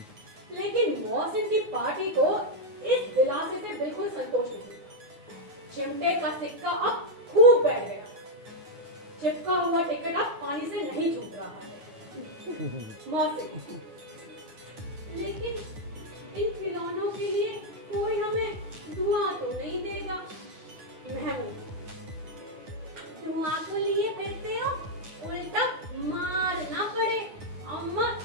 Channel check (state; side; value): late; left; 9.5 ms